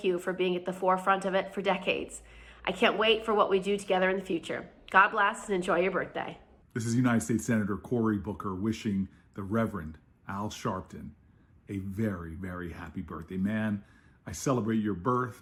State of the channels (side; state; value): both; identical; correlation 1.00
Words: you for being at the forefront of it for decades. I can't wait for what we do together in the future. God bless and enjoy your birthday. This is United States Senator Cory Booker wishing the Reverend Al Sharpton a very, very happy birthday. Man, I celebrate your birth,